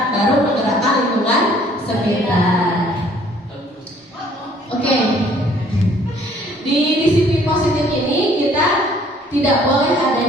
baru menggerakkan lingkungan sekitar. Oke. Di disiplin positif ini kita tidak boleh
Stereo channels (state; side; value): normal; both; correlation 0.59